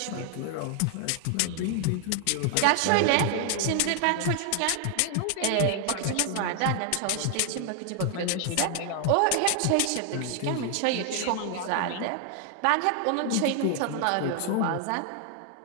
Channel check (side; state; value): both; different; correlation 0.00